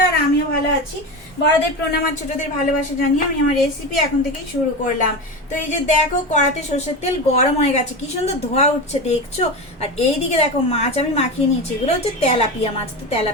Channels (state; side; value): normal; both; correlation 0.22